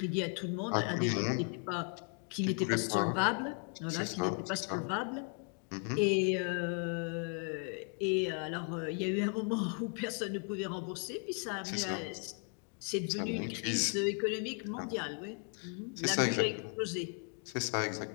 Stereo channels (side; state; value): right; quieter; 37.9 dB